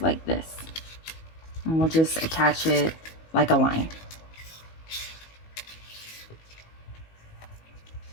this. And we'll just attach it like a line.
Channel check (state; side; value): late; right; 19 ms